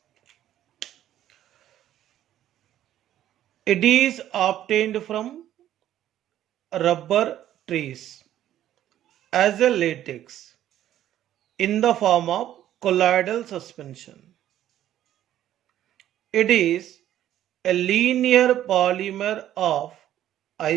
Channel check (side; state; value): left; quieter; 12.1 dB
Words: It is obtained from rubber trees as a latex in the form of colloidal suspension. It is a linear polymer of